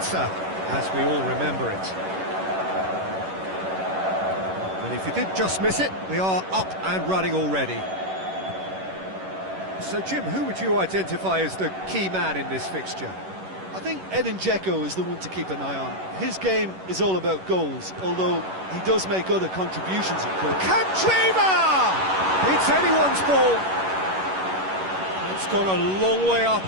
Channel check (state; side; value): late; left; 11 ms